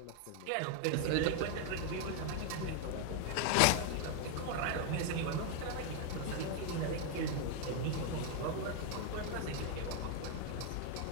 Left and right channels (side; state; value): both; different; correlation 0.00